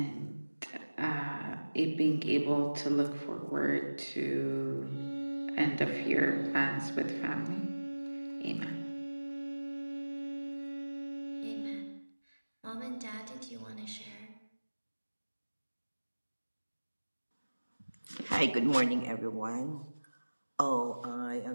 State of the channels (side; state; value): both; inverted; correlation -1.00